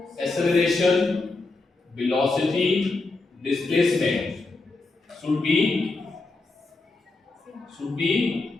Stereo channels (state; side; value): quieter; right; 3.4 dB